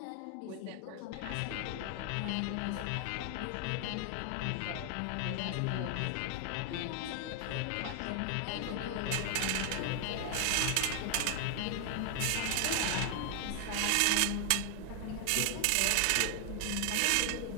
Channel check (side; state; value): both; different; correlation 0.00